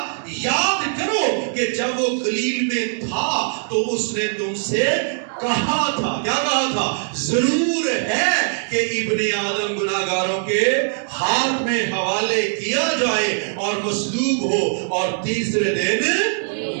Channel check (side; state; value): left; silent; digital silence